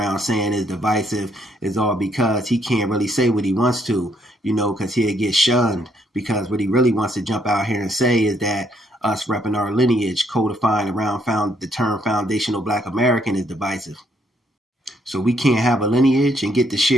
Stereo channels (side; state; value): both; normal; correlation 0.71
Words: saying is divisive is all because he can't really say what he wants to, because he'll get shunned. Because what he really wants to jump out here and say is that us repping our lineage, codifying around the term foundational Black American is divisive. So we can't have a lineage and get to